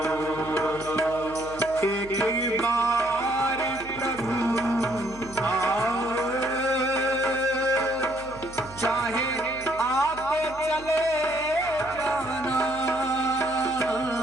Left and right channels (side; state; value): right; noise; hum, 18 dB below the sound